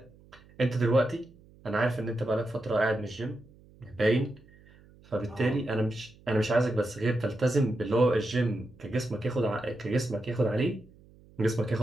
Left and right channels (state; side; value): noise; right; hum, 26 dB below the sound